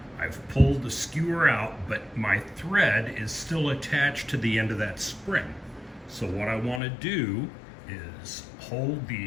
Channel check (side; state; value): right; drops out; at 6.8 s